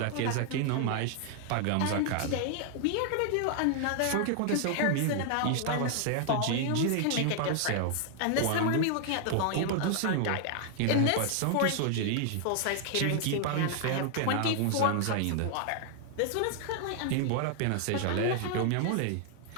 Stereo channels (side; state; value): both; different; correlation 0.00